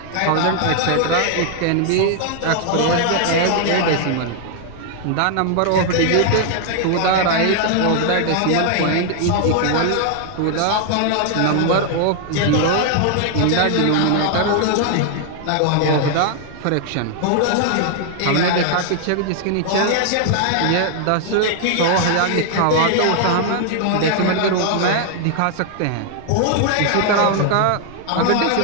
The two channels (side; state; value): both; different; correlation 0.00